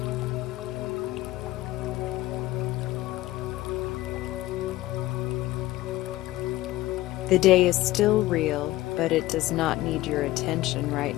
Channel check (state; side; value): quieter; right; 16.9 dB